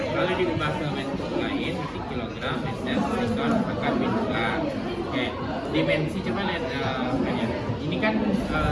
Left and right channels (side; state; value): both; identical; correlation 1.00